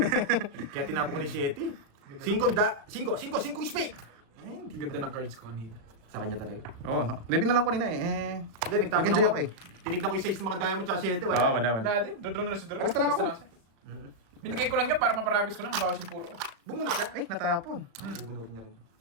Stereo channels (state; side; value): late; left; 35 ms